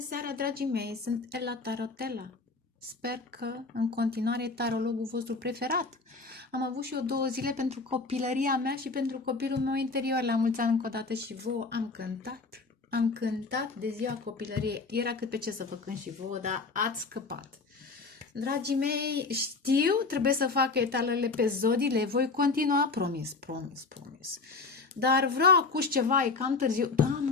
seara, dragii mei! Sunt Ella Tarotella. Sper că în continuare e tarologul vostru preferat. Am avut și eu 2 zile pentru copilăria mea și pentru copilul meu interior. La mulți ani încă o dată și vouă am cântat. Am cântat de ziua copilăriei. Era cât pe ce să vă cânt și vouă, dar ați scăpat. Dragii mei, știu, trebuie să fac etalele pe zodii, le voi continua, promis. Dar vreau acum ceva, e cam târziu. Da,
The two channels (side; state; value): right; quieter; 4.0 dB